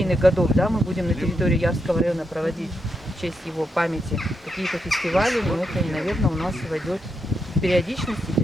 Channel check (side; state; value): both; normal; correlation 0.83